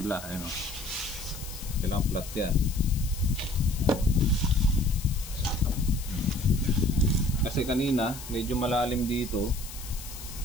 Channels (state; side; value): noise; left; hiss, 13 dB below the sound